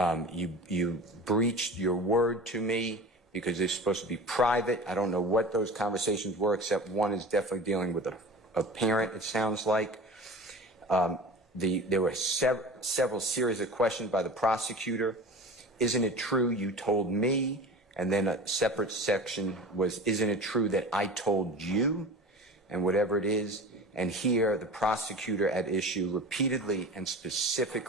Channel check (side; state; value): both; normal; correlation 0.35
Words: you breached your word to me because they're supposed to be private. I don't know what those conversations were, except one is definitely dealing with a parent, it sounds like. There were several series of questions by the prosecutor. Isn't it true you told me? And then a separate section was, isn't it true that I told you? And whatever it is. And here, the prosecutor at issue repeatedly and